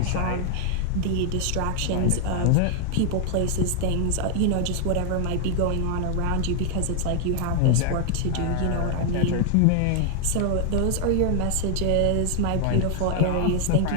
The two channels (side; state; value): both; different; correlation 0.00